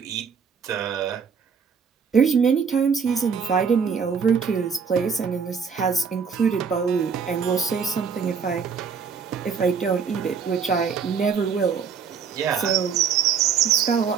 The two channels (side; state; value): left; quieter; 6.4 dB